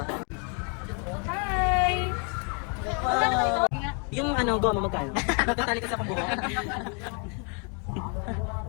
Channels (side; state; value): right; quieter; 36.8 dB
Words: Hi! Wow! Yung ano, goma magkano? Magtatali kasi akong buhok.